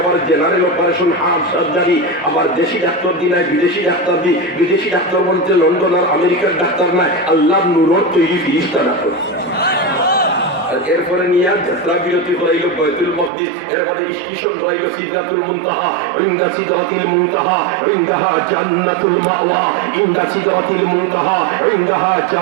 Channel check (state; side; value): drops out; left; at 13.3 s